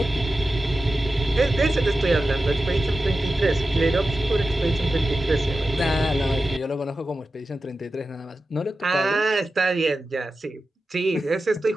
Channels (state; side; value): normal; both; correlation 0.93